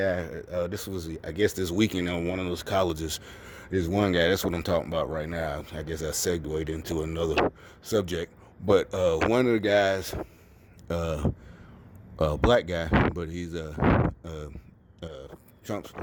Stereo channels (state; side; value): identical; both; correlation 1.00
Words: This was, I guess, this weekend on one of those colleges. There's one guy. That's what I'm talking about right now. I guess I segued into another subject. But one of the guys black guy, but he's a, a Trump